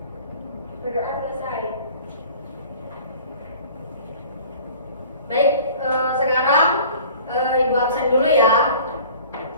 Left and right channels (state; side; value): inverted; both; correlation -0.47